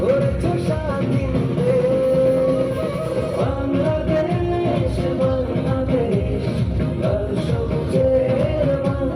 করেছ স্বাধীন বাংলাদেশ, বাংলাদেশ লাল সবুজের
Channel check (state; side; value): identical; both; correlation 1.00